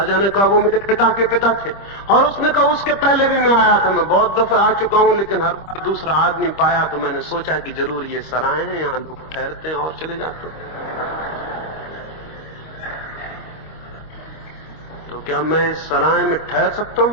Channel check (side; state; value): right; late; 25 ms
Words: ने कहा, वो मेरे पिता के पिता थे। और उसने कहा, उसके पहले भी मैं आया था, मैं बहुत दफे आ चुका हूं, लेकिन हर बार दूसरा आदमी पाया तो मैंने सोचा कि जरूर ये सराय हैं, यहां लोग ठहरते हैं और चले जाते हैं। तो क्या मैं इस सराय में ठहर सकता